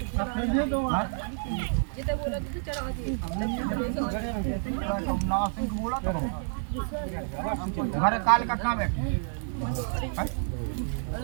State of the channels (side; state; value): left; silent; digital silence